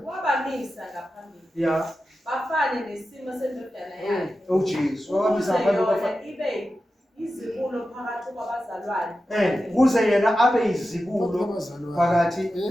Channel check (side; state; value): both; normal; correlation 0.92